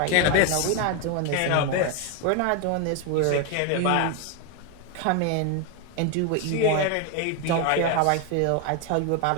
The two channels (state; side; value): different; both; correlation 0.01